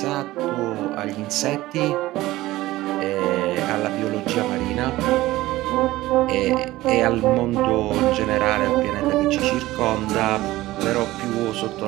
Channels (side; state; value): left; quieter; 17.3 dB